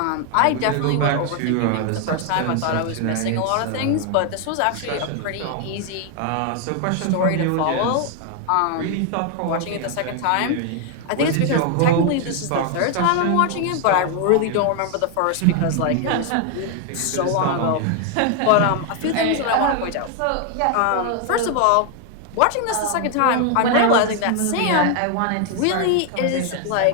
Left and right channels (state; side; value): different; both; correlation 0.00